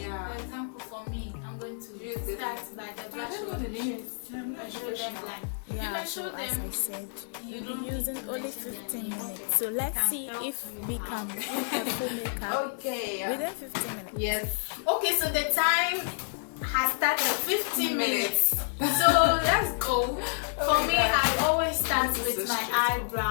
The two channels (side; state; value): right; silent; 57 dB below the other